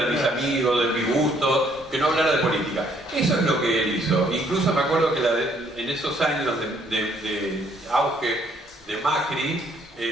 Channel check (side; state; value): both; normal; correlation 0.66